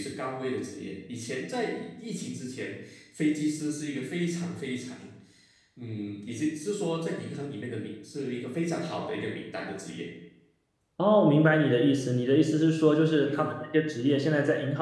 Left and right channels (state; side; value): identical; both; correlation 1.00